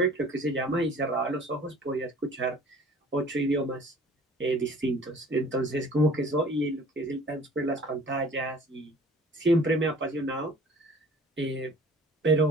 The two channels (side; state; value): both; normal; correlation 0.49